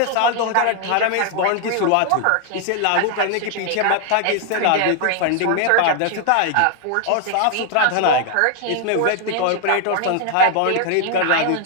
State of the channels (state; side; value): different; both; correlation 0.00